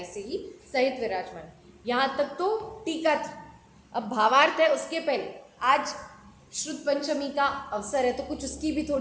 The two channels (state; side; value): identical; both; correlation 1.00